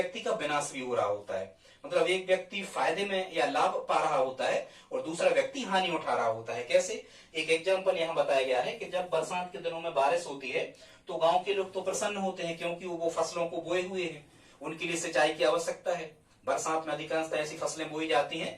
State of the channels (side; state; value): both; identical; correlation 1.00